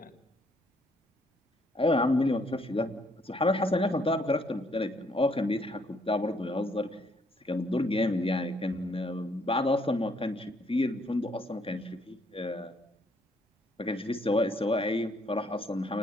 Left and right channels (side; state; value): both; normal; correlation 0.68